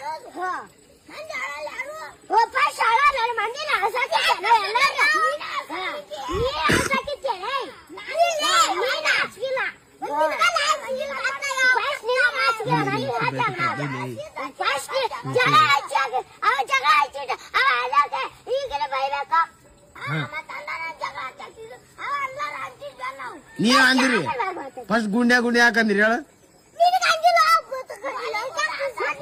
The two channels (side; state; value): both; identical; correlation 1.00